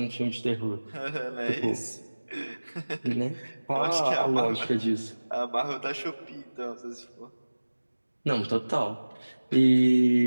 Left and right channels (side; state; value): both; inverted; correlation -1.00